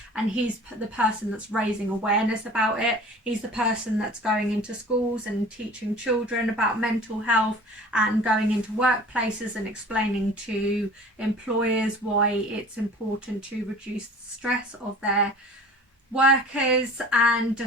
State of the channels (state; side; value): normal; both; correlation 0.44